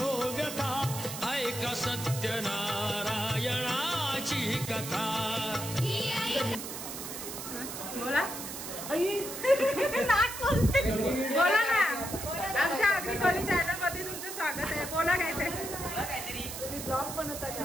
व्यथा, ऐक सत्यनारायणाची कथा. बोला बोला ना. आमच्या आगरी कोली चॅनल मध्ये तुमचं स्वागत आहे. बोला काय ते तुम्ही ब्लॉग बनवता का?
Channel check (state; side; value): noise; right; hiss, 8 dB below the sound